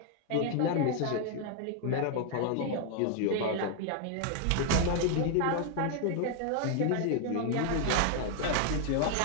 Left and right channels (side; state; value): both; different; correlation 0.00